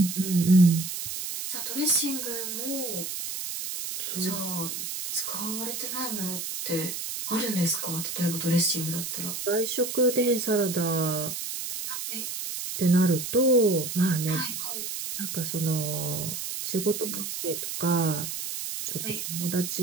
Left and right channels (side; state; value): right; noise; hiss, 5 dB below the sound